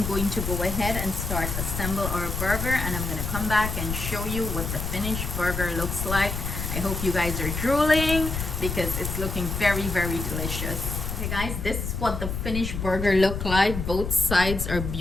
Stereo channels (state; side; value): noise; left; rumble, 4 dB below the sound